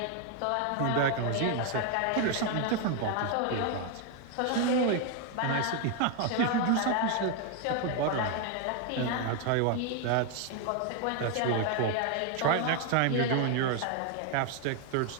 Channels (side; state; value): both; different; correlation 0.01